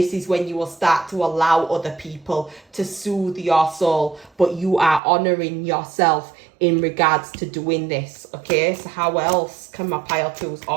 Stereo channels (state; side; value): drops out; left; at 5.0 s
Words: is when you will start to allow other people to soothe your soul, but you are honouring yourself in regards to doing this, okay? So how else can my pile twos